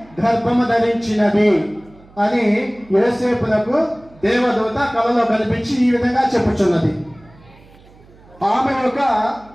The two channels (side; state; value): right; noise; hum, 26 dB below the sound